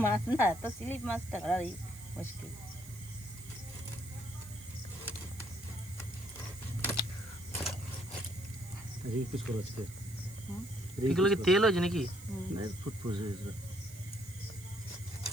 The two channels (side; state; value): right; noise; hiss, 18 dB below the sound